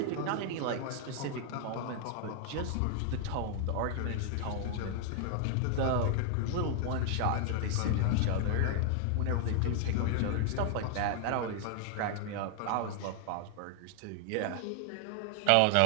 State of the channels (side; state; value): both; different; correlation 0.00